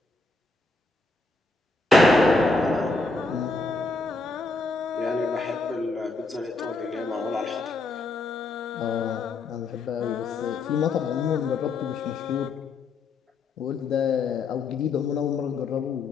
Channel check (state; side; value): quieter; right; 3.5 dB